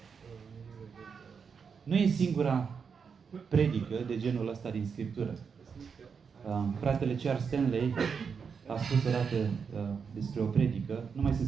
Nu e singura predică de genul ăsta din Scriptură. Fratele Charles Stanley a spus odată despre o predică. Nu mai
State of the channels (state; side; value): quieter; left; 6.1 dB